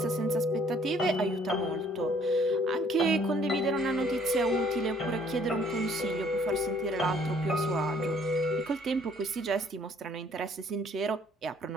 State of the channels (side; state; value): both; normal; correlation 0.61